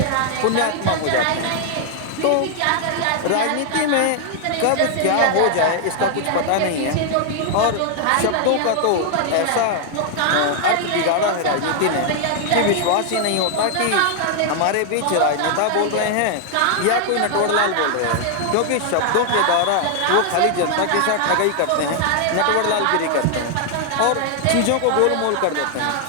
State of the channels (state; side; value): different; both; correlation 0.00